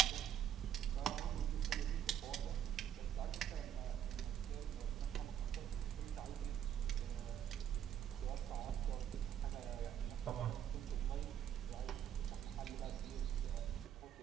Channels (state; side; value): quieter; left; 9.7 dB